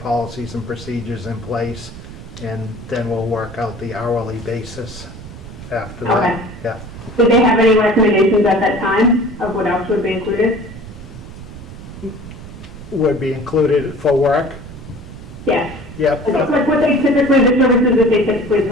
and procedures in place, and then we'll work out the hourly basis after that. Okay. Yeah. Did they have any recommendations at that time of what else would be included? Would be included for work? Yes. Yep. Like what they typically, the services that they typically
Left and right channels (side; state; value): right; noise; rumble, 14 dB below the sound